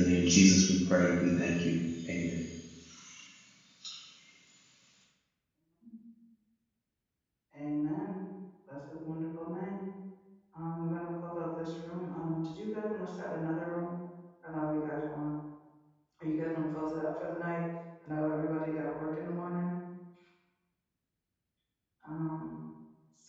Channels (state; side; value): identical; both; correlation 1.00